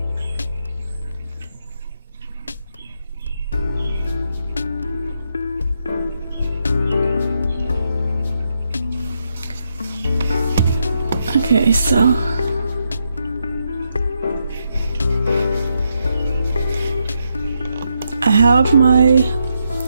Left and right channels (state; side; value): inverted; both; correlation -0.81